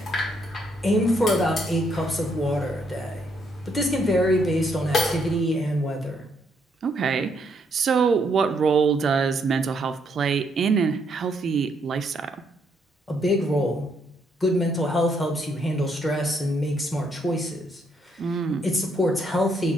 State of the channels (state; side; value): normal; both; correlation 0.73